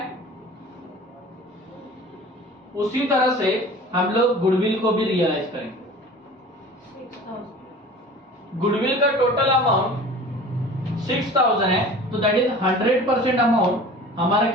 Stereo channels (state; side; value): normal; both; correlation 0.42